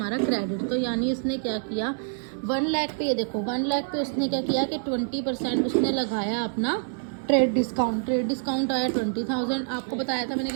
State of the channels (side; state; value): left; silent; 61 dB below the other